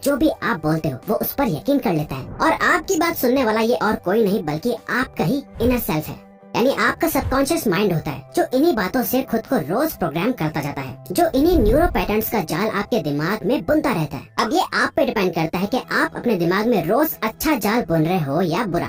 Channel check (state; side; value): identical; both; correlation 1.00